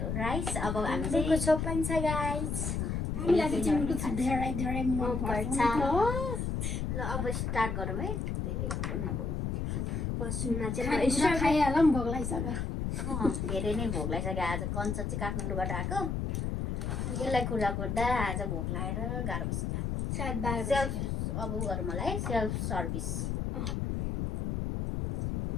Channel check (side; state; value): left; noise; rumble, 1 dB below the sound